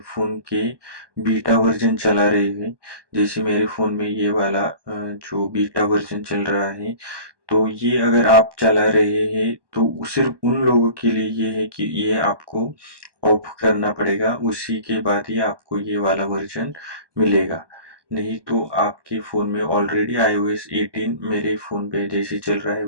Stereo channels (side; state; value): left; late; 1.2 ms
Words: के बीटा वर्जन चला रहे हैं, जैसे मेरे फ़ोन में ये वाला जो बीटा वर्जन चल रहा है, तो ये अगर आप चला रहे हैं तो सिर्फ उन लोगों के लिए ये है कि ये आपको ऑफ करना पड़ेगा, उसी के बाद ही आपको ये वाला वर्जन मिलेगा। नहीं तो आपके फ़ोन में ऑलरेडी iOS 18 मेरे फ़ोन पे जैसे चल रहा है